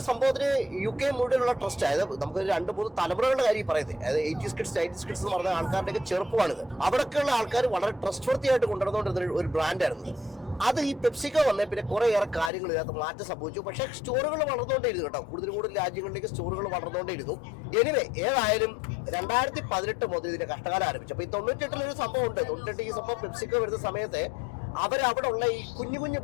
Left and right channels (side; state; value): right; drops out; at 12.5 s